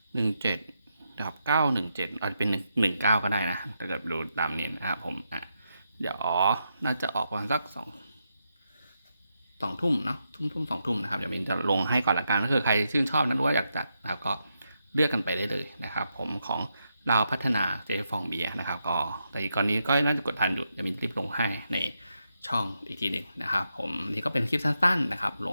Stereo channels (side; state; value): both; inverted; correlation -0.83